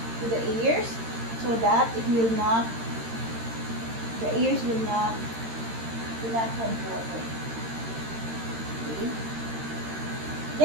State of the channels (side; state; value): left; late; 13 ms